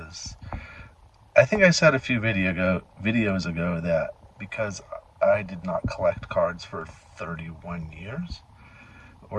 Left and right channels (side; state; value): both; identical; correlation 1.00